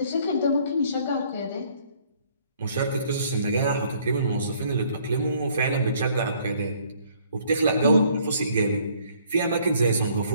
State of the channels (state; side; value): inverted; both; correlation -0.61